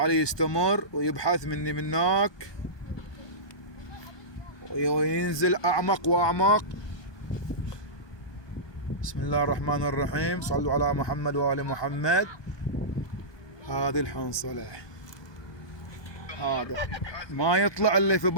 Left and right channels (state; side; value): late; right; 1.2 ms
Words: يستمر ويبحث مني منك وينزل اعمق واعمق. بسم الله الرحمن الرحيم. صلوا على محمد وآل محمد. هذه الحنصلة هذا ما يطلع الا في